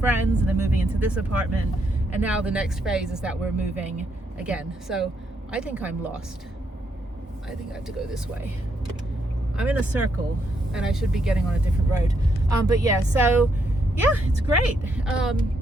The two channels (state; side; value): normal; both; correlation 0.77